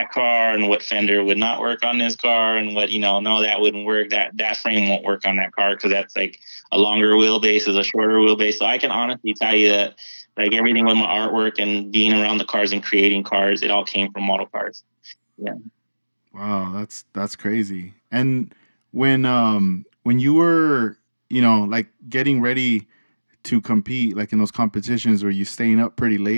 car, and what fender would not work on this car, and what no, that wouldn't work. That frame won't work on that car because that's like a longer wheelbase is a shorter wheelbase. So I can honestly tell you that like everything with my artwork and being around the cars and creating cars, it all came from model cars. Yeah. Wow, that's crazy. And when you were, like getting ready to compete like in those competitions, were you staying up pretty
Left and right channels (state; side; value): inverted; both; correlation -1.00